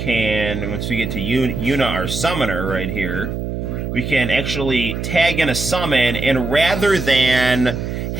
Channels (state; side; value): noise; right; hum, 4 dB below the sound